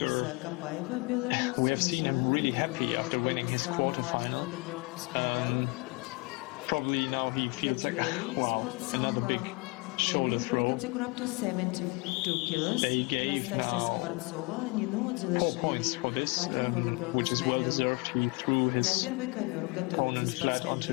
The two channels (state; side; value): quieter; right; 29.0 dB